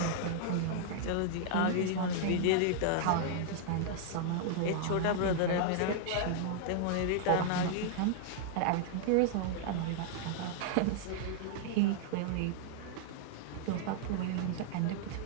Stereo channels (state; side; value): different; both; correlation -0.01